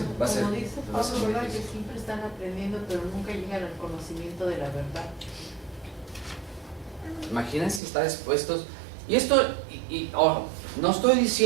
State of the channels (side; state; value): left; drops out; at 7.8 s